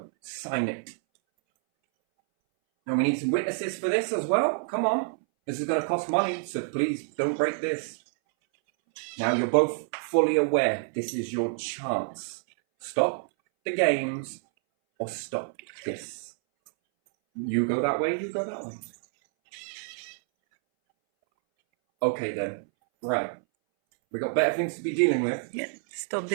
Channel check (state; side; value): silent; left; 59 dB below the other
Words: Sign it. Now, we need some witnesses for this as well. Come on. This is going to cost money, so please don't break this. Now, you're both fully aware this is your chance. Stop the games. Or stop this. You go that way, you go that way. Okay then. Right. We got better things to be dealing with. Stop